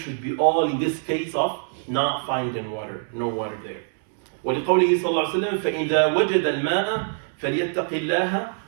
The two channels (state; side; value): silent; left; 60 dB below the other